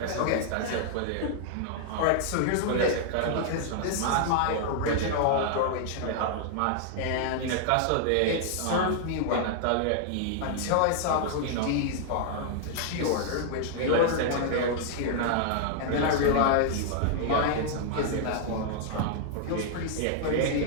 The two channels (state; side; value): different; both; correlation -0.01